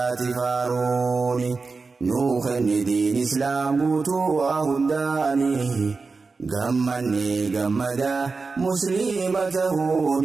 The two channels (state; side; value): quieter; left; 4.3 dB